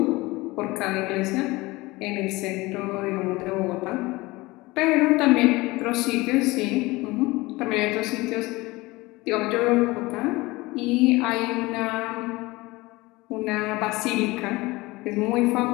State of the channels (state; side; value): quieter; right; 21.5 dB